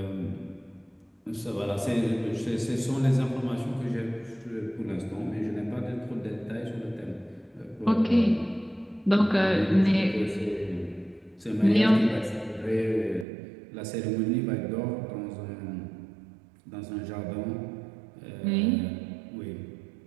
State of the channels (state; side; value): drops out; left; at 13.2 s